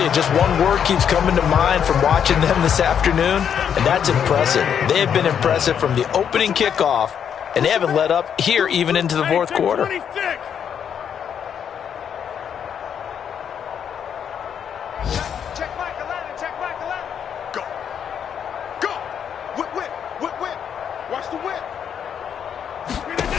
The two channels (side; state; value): right; quieter; 8.2 dB